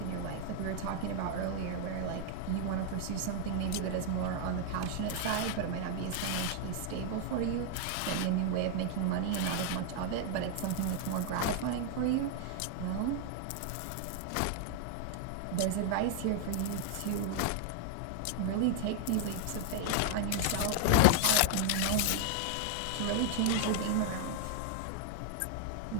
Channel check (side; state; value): both; different; correlation 0.00